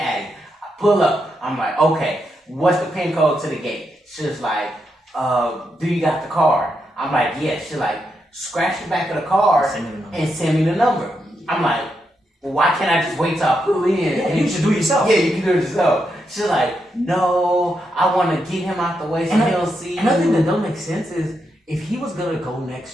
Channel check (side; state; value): both; normal; correlation 0.83